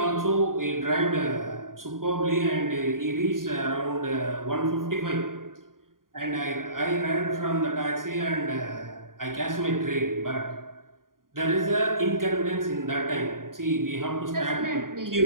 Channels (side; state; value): left; late; 0.91 ms